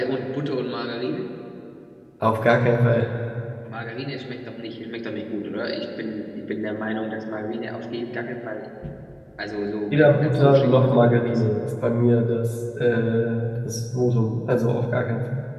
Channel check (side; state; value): both; identical; correlation 1.00